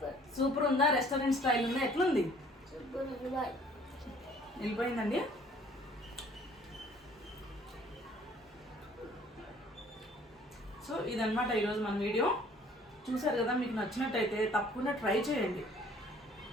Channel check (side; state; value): both; normal; correlation 0.56